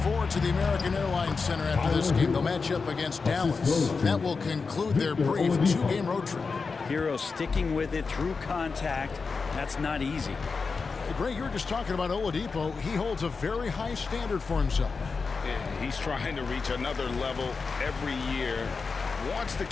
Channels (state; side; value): quieter; right; 4.7 dB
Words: forward to the American Airlines Center after this game. They'll match up against Dallas. That will conclude their brief 2-game road trip. Hero sticking with it through contact. That's not easy. Hey, Greg, you were just talking about Oladipo. He holds a very high standard for himself. Yeah, he's trying to reach another level every year. Wants to